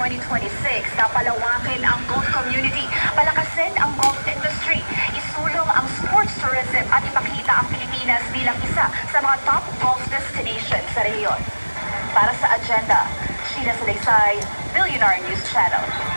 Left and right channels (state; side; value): inverted; both; correlation -1.00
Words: 2026 na palawakin ang golf community, palakasin ang golf industry, isulong ang sports tourism at ipakita ang Pilipinas bilang isa sa mga top golf destinations sa rehiyon. Para sa agenda, Sheila Salaysay, Billionaire News Channel.